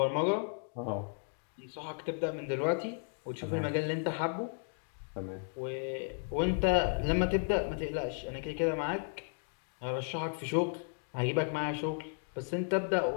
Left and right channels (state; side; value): silent; right; 55 dB below the other